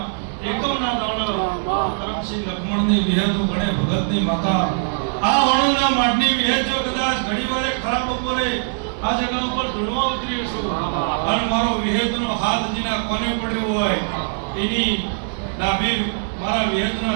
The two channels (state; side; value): silent; left; digital silence